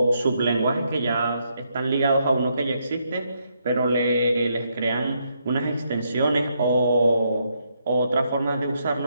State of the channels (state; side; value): inverted; both; correlation -0.77